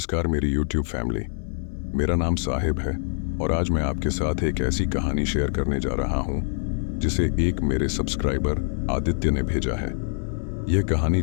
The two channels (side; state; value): right; silent; digital silence